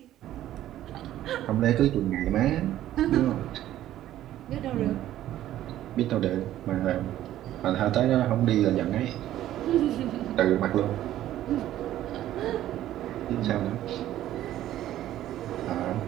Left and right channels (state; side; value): quieter; left; 13.1 dB